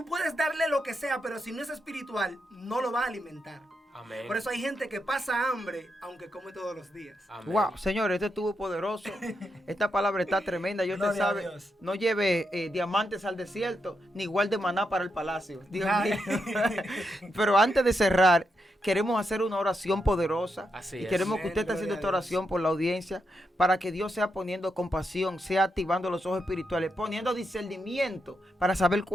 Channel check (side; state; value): both; normal; correlation 0.84